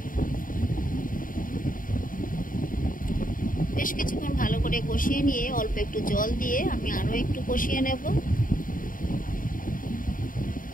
বেশ কিছুক্ষণ ভালো করে কষিয়ে নিয়ে অল্প একটু জল দিয়ে আমি আরও একটু কষিয়ে নেব।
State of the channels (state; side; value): late; right; 0.40 ms